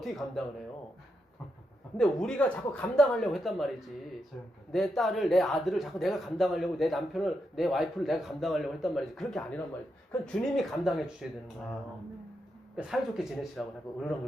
감당을 해요? 근데 우리가 자꾸 감당하려고 했단 말이지. 내 딸을, 내 아들을 자꾸 내가 감당하려고, 내 남편을, 내 와이프를 내가 감당하려고 했단 말이지. 그렇게 아니란 말이지. 그건 주님이 감당해 주셔야 되는 거예요. 그러니까 사이좋게 지내시라고 하고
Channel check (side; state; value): both; normal; correlation 0.84